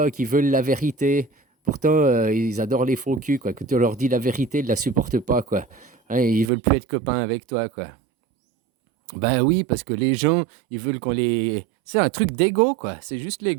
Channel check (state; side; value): drops out; left; at 6.5 s